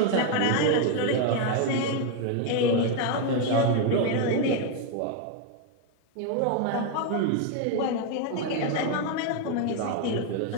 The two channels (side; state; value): both; different; correlation 0.01